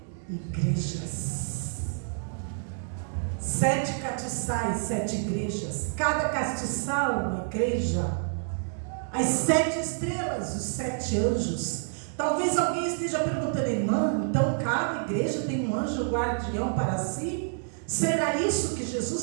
igrejas. 7 castiçais, 7 igrejas. Cada castiçal uma igreja. As 7 estrelas, os 7 anjos. Talvez alguém esteja perguntando: irmã, então cada igreja tem um anjo guardião para si? Será isso que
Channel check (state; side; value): silent; left; digital silence